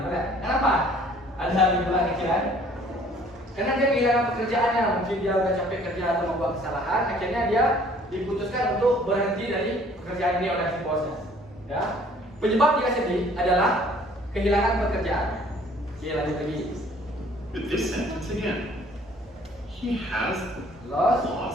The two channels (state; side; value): normal; both; correlation 0.56